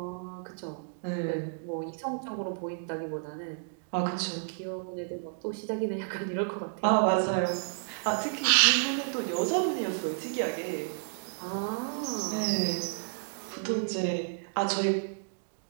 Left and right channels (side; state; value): left; silent; digital silence